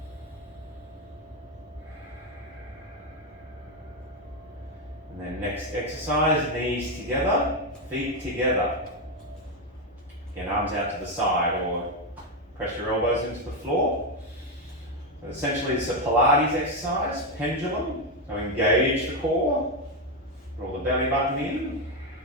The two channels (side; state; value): both; normal; correlation 0.07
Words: And then next exercise, knees together, feet together. Again, arms out to the side or press your elbows into the floor. So essentially it's a Pilates exercise, pendulum. So engage the core, draw the belly button in.